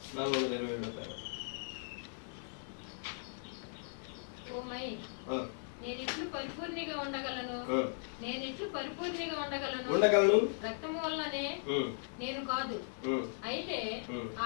427 కార్యం. ఓ మై, నేనిట్లు పరిపూర్ణిగా ఉండగలను, ఉండగలను. రక్తము వల్లనే నేను కాదు, అయితే ఆ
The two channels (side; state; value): right; silent; 53 dB below the other